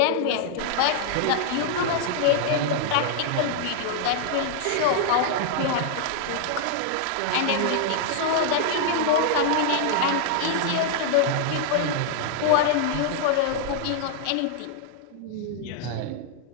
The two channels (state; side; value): different; both; correlation -0.01